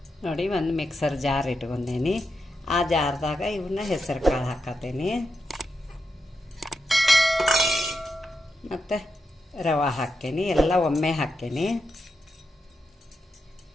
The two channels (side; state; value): both; normal; correlation 0.86